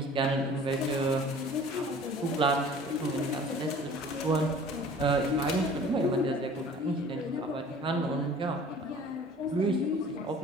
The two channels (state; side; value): normal; both; correlation 0.47